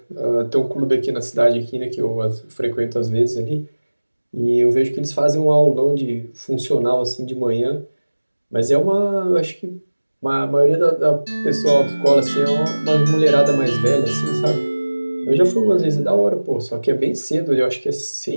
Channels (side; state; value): both; inverted; correlation -1.00